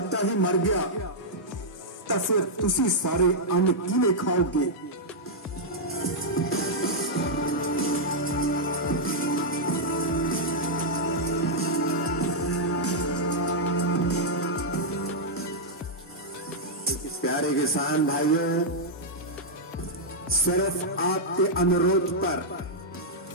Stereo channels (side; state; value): both; normal; correlation -0.06